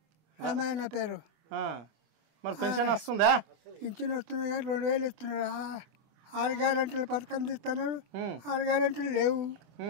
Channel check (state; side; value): late; left; 25 ms